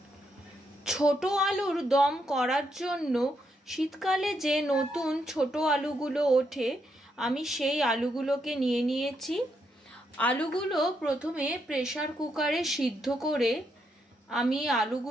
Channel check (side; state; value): both; normal; correlation 0.79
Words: ছোট আলুর দম করার জন্য শীতকালে যে নতুন ছোট আলুগুলো ওঠে আমি সেই আলুগুলোকে নিয়ে নিয়েছি। আলুগুলো প্রথমে প্রেসার কুকারে সিদ্ধ করে আমি